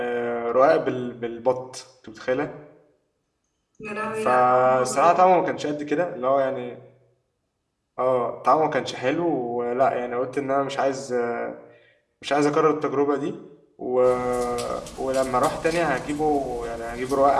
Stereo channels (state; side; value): identical; both; correlation 1.00